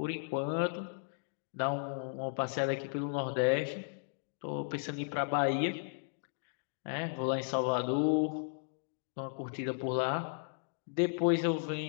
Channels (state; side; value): silent; right; digital silence